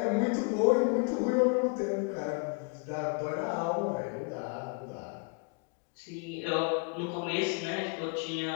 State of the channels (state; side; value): quieter; right; 35.4 dB